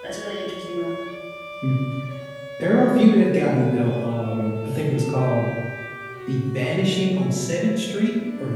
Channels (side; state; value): both; identical; correlation 1.00